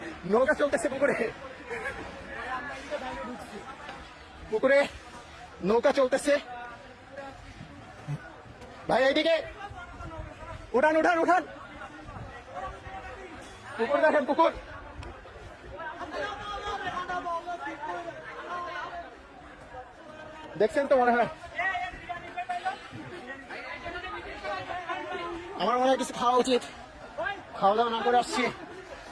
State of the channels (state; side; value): identical; both; correlation 1.00